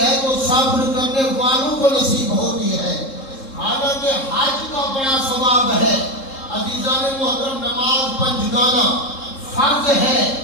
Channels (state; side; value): late; right; 3.7 ms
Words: تو صبر کرنے والوں کو نصیب ہوتی ہے۔ حالانکہ حج کا بڑا ثواب ہے۔ عزیزان محترم، نماز پنجگانہ فرض ہے۔